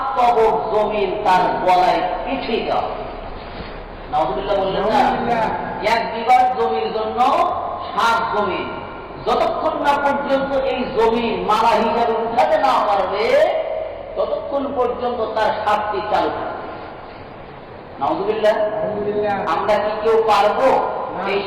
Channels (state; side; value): identical; both; correlation 1.00